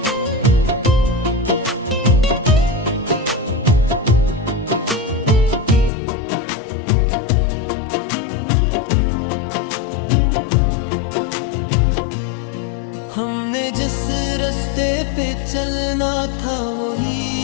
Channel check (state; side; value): drops out; right; at 5.9 s